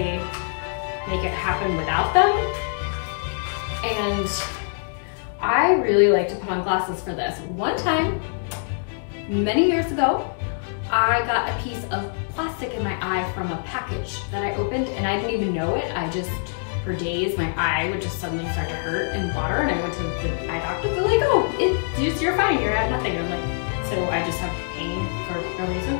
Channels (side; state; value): right; silent; 62 dB below the other